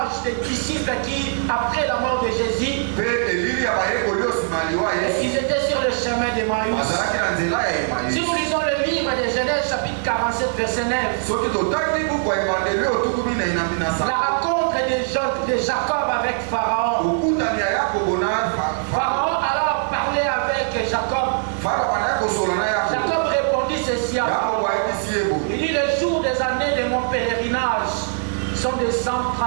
des disciples qui, après la mort de Jésus, ils étaient sur le chemin d'Emmaüs. Si nous lisons le livre de Genèse chapitre 47 verset 9, la rencontre de Jacob avec Pharaon. Pharaon alors parlait avec Jacob. Jacob répondit ceci à Pharaon. Il dit: le jour des années de mon pèlerinage sont de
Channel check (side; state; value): left; silent; 65 dB below the other